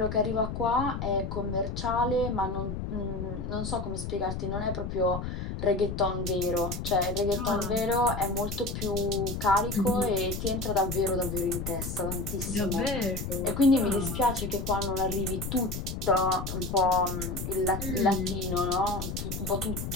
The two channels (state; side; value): noise; left; rumble, 5 dB below the sound